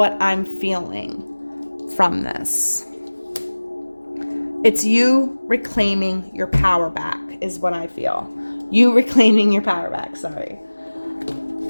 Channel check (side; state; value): both; inverted; correlation -1.00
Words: I'm feeling from this. It's you reclaiming your power back is what I feel. You reclaiming your power back, sorry.